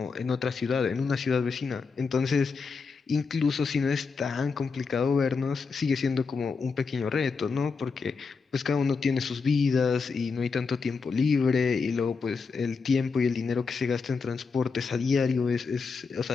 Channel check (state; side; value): quieter; right; 4.9 dB